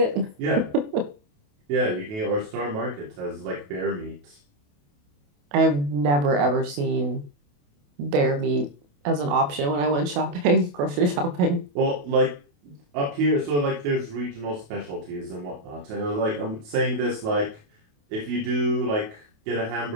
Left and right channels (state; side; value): late; left; 28 ms